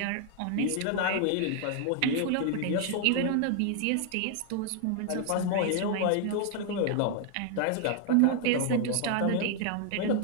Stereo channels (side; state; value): both; different; correlation 0.00